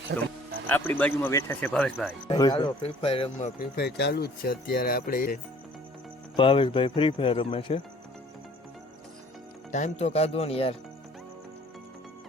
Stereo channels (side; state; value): both; normal; correlation 0.54